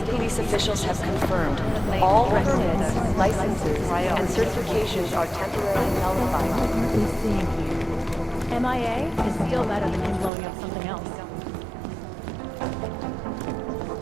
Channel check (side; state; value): left; drops out; at 10.3 s